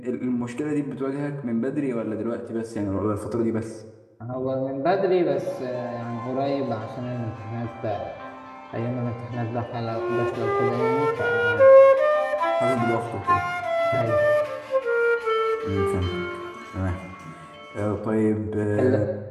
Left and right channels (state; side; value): identical; both; correlation 1.00